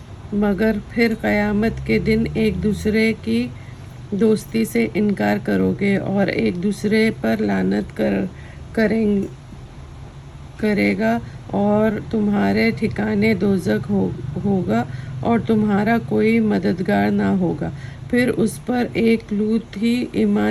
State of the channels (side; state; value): both; identical; correlation 1.00